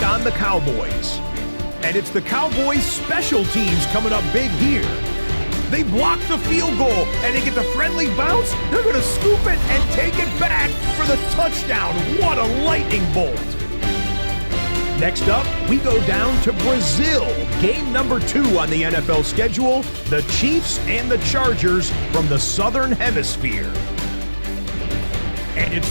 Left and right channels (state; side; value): inverted; both; correlation -1.00